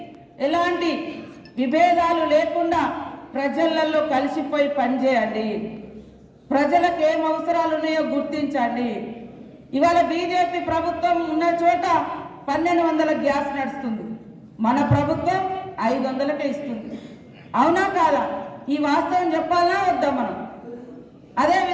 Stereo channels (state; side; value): identical; both; correlation 1.00